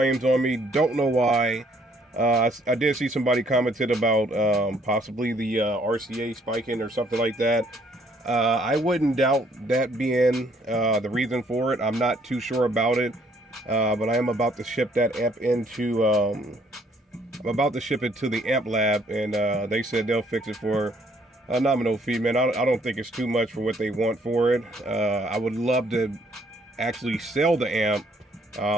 on me. Don't know why. I did see somebody commented about possibly the RCA spiking or something like that. I wouldn't doubt that being the reason for it. I'm not too sure about it, but I am about to ship that amp into. I'm about to ship it to the amp lab, and they said they'll fix it for a nominal fee, man. I don't think it's too much for what they want for it. I would love to actually sell the amp,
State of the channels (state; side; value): normal; both; correlation 0.65